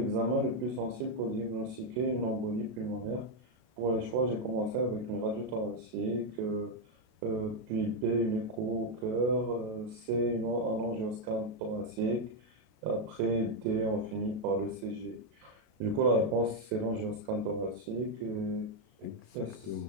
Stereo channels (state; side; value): late; left; 33 ms